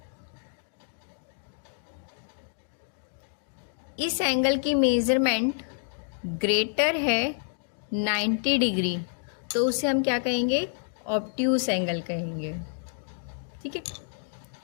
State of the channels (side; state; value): right; silent; digital silence